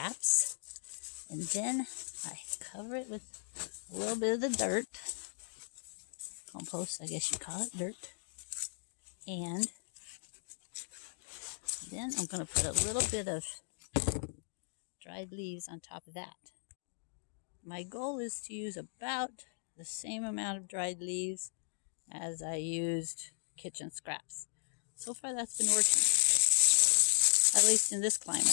and then I cover it with a little bit of the dirt, compost I guess you call it, dirt, and then I'm going to put a little bit of dried leaves on top of that. My goal is to use about the same amount of dried leaves as I used kitchen scraps. So far that's been working, at least in this climate.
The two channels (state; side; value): silent; right; digital silence